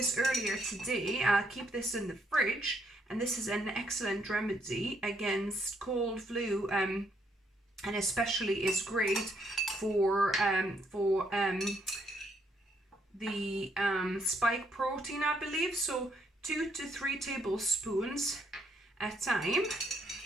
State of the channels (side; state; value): both; normal; correlation 0.73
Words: earlier today. I'll keep this in the fridge, and this is an excellent remedy against cold, flu, and especially is great for the spike protein, I believe. So 2 to 3 tablespoons at a time.